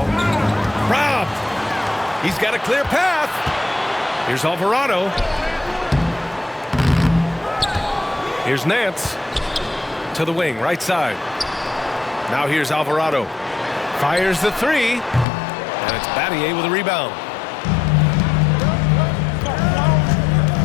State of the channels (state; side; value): drops out; right; at 15.2 s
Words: Robbed. He's got a clear path. Here's Alvarado. Here's Nance to the wing, right side. Now here's Alvarado. Fires the three. And it's Battier with a rebound.